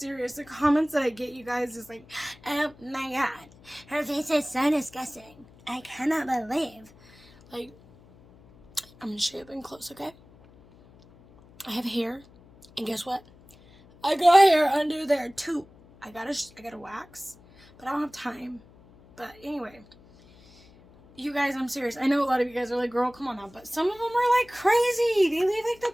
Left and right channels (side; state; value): left; noise; hum, 25 dB below the sound